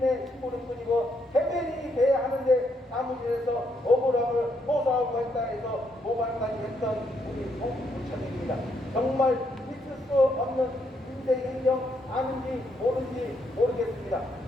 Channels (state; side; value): normal; both; correlation 0.75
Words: 힘으로 뿐이고 대변인이 돼야 하는데 사무실에서 억울함을 호소하고 했다 해서 모발까지 했던 우리 정부구청입니다. 정말 있을 수 없는 인생 행정 아는지 모르는지 모르겠습니다.